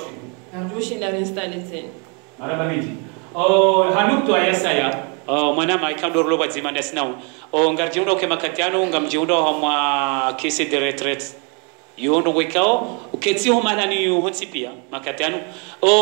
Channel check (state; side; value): quieter; left; 35.1 dB